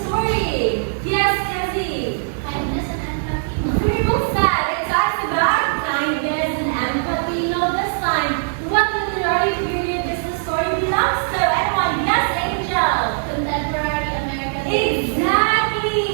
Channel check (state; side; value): silent; left; digital silence